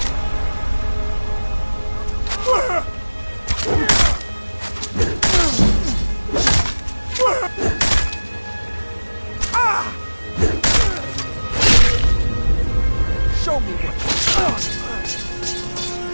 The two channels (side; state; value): both; inverted; correlation -1.00